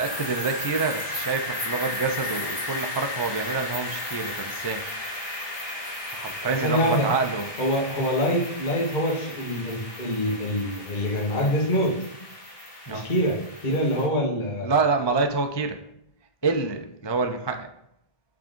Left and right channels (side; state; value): right; late; 1.2 ms